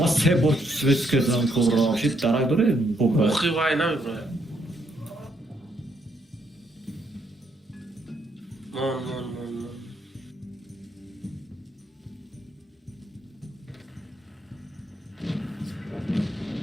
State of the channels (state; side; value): normal; both; correlation 0.74